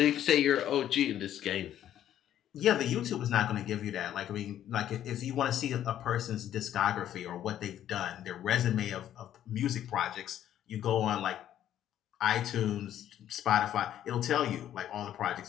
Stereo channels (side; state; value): right; quieter; 11.3 dB